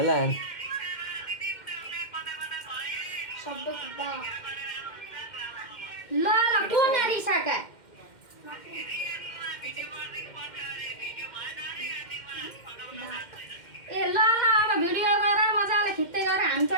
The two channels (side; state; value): right; late; 2.1 ms